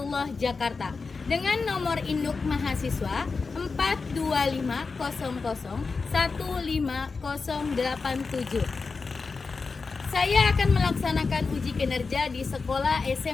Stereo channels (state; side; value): quieter; right; 4.5 dB